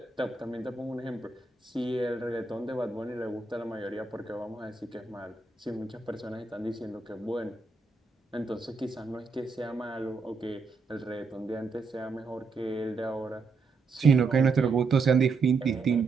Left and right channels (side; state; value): left; quieter; 4.3 dB